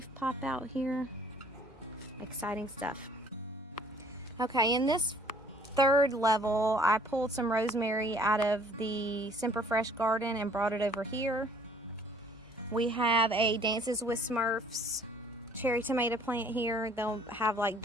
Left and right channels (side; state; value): both; normal; correlation 0.57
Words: pop out here. Exciting stuff. Okay, in this 3rd level, I pulled some rosemary out of the Semper Fresh garden and brought it over here. We have a Dances with Smurfs cherry tomato plant here. They'll have like